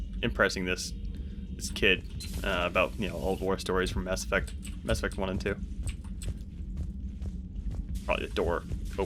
impressing this kid about, old war stories from Mass Effect 1 and 2. Probably the door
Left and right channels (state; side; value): identical; both; correlation 1.00